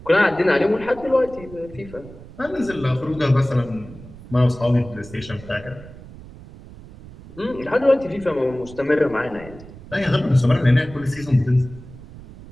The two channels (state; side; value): noise; right; rumble, 18 dB below the sound